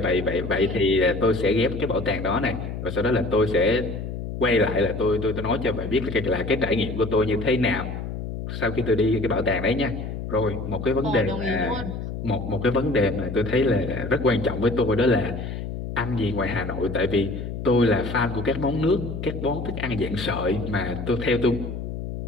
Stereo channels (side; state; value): left; noise; hum, 6 dB below the sound